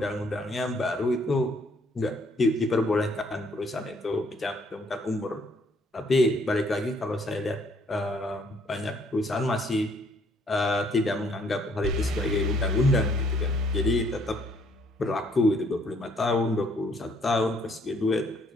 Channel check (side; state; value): both; normal; correlation 0.65